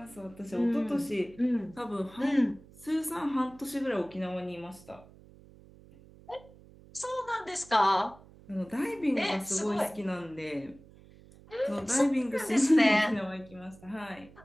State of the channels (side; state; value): right; noise; hum, 23 dB below the sound